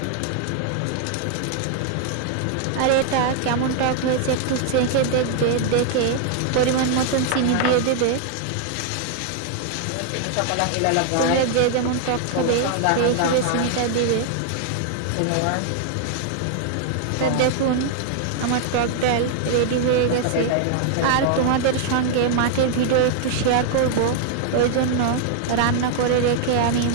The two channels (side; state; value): both; different; correlation 0.00